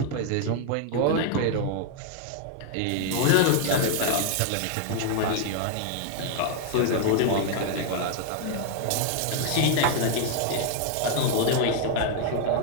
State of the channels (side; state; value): both; different; correlation 0.00